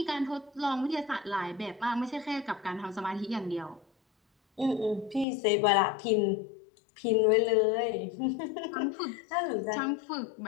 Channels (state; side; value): drops out; right; at 5.2 s